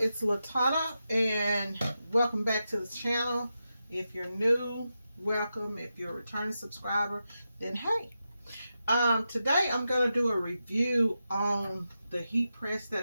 It's Latana, and welcome back to the channel. If you're new, welcome. If you're a returning subscriber, then hey. Today I'm going to do a review on the heat press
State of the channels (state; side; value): inverted; both; correlation -0.89